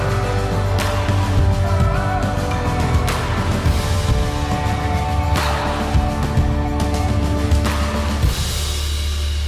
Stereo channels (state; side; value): identical; both; correlation 1.00